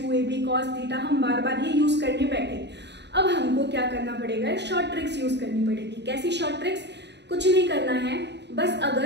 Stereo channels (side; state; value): left; late; 0.50 ms